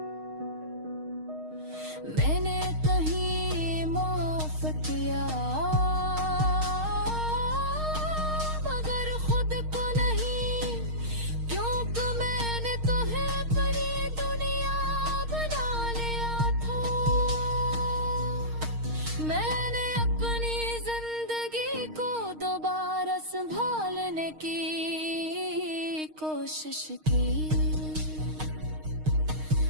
मैंने कहीं माफ किया, मगर खुद को नहीं, क्योंकि मैंने तुम्हें बड़ी दुनिया बना लिया था। मैंने अपनी जिंदगी को दोबारा संभालने की कोशिश की,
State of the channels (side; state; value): left; late; 6.5 ms